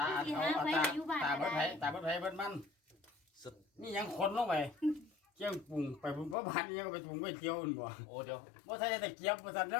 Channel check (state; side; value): drops out; right; at 6.4 s